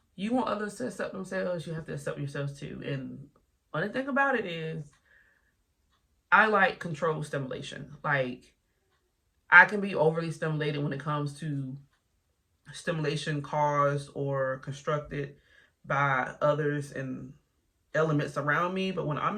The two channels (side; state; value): both; identical; correlation 1.00